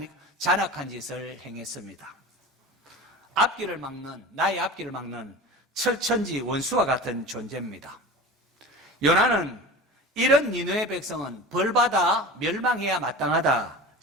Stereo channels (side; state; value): both; normal; correlation 0.33